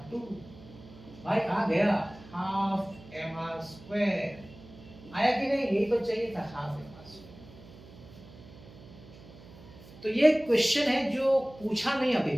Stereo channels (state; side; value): noise; right; hum, 20 dB below the sound